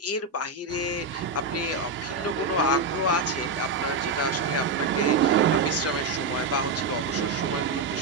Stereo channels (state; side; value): quieter; left; 3.5 dB